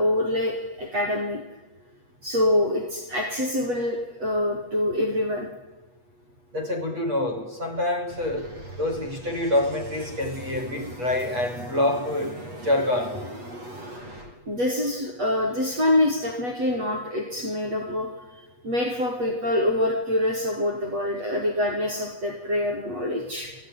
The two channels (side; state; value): left; late; 8.2 ms